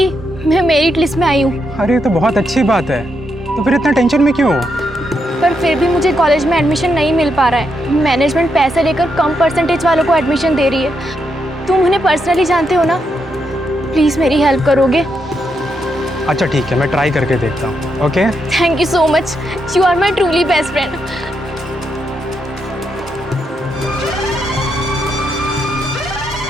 मैं मेरिट लिस्ट में आई हूँ। अरे तो बहुत अच्छी बात है, तो फिर इतना टेंशन में क्यों? पर फिर भी मुझे कॉलेज में एडमिशन नहीं मिल पा रहा है। मैनेजमेंट पैसे लेकर कम परसेंटेज वालों को एडमिशन दे रही है। तुम उन्हें पर्सनली जानते हो ना, प्लीज़ मेरी हेल्प करोगे? अच्छा ठीक है, मैं ट्राई करके देखता हूँ। Okay, thank you so much, you are my truly best friend.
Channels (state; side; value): normal; both; correlation 0.81